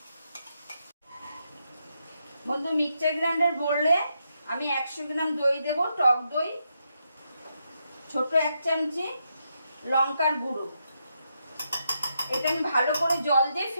বন্ধু। মিক্সচার গ্রাইন্ডার বললে আমি 100 গ্রাম দই দেব, টক দই, ছোট এক চামচি লঙ্কার গুঁড়ো। এটা আমি ভালো করে জল দিয়ে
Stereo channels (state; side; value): inverted; both; correlation -0.82